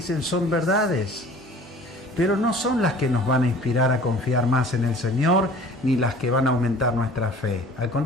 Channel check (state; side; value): normal; both; correlation 0.47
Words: son verdades, pero no son las que nos van a inspirar a confiar más en el Señor, ni las que van a aumentar nuestra fe. Al